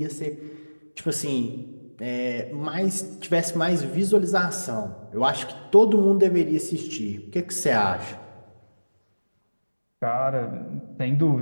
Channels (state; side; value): inverted; both; correlation -1.00